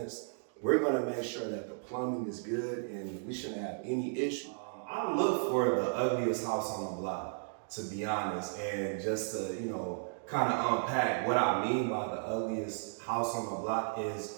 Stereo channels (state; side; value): silent; left; digital silence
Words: We're going to make sure that the plumbing is good and we shouldn't have any issue. I look for the ugliest house on the block. to be honest. And just to, kind of unpack what I mean by the ugliest house on the block